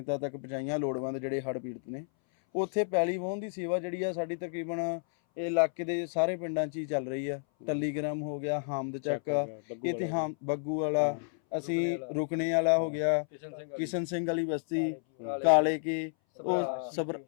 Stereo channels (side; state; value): right; silent; 57 dB below the other